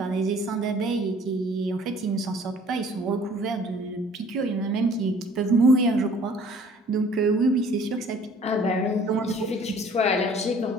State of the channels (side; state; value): both; normal; correlation 0.53